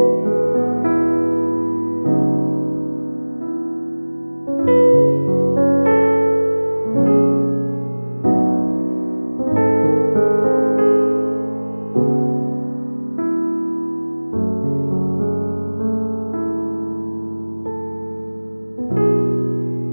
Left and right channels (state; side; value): inverted; both; correlation -1.00